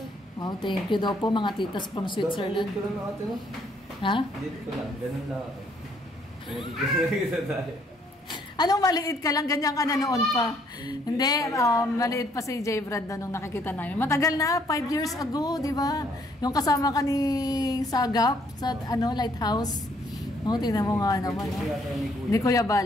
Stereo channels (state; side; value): normal; both; correlation 0.66